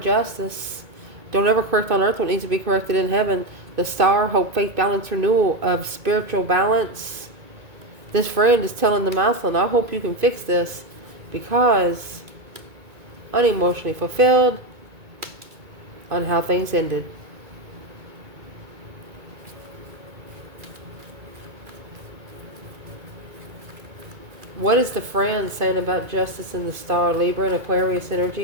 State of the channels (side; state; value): left; late; 2.2 ms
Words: justice. Don't ever correct on earth what needs to be corrected in heaven. The star, hope, faith, balance, renewal of spiritual balance. This friend is telling the masculine, I hope you can fix this, because unemotionally fulfilled on how things ended. What is the friend saying about justice in the star? Libra and Aquarius